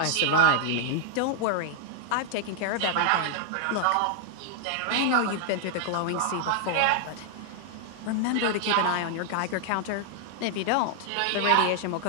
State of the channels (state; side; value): different; both; correlation -0.01